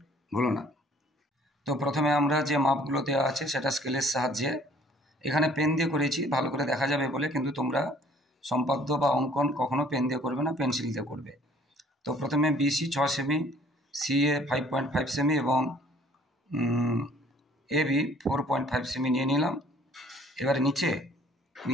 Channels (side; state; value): both; normal; correlation 0.56